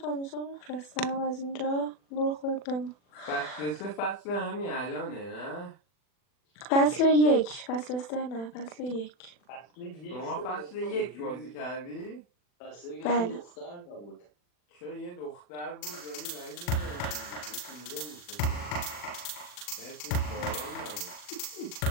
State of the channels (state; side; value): late; right; 40 ms